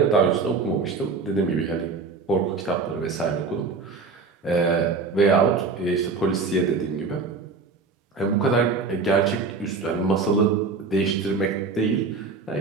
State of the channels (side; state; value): left; quieter; 4.5 dB